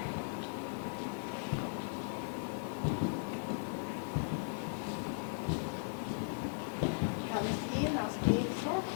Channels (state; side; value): silent; right; digital silence